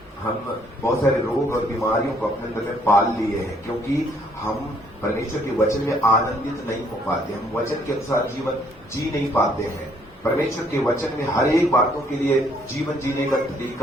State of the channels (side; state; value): both; normal; correlation 0.66